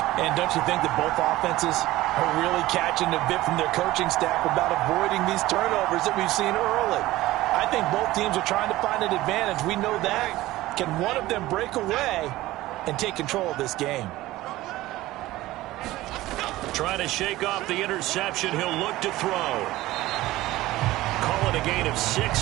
And don't you think that both offenses are really catching a bit from their coaching staff about avoiding these turnovers that we've seen early? I think both teams are trying to find an advantage. We know that. Can one of them break away and take control of this game? Trying to shake off the interception. He'll look to throw. Call it a gain of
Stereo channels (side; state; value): left; quieter; 17.1 dB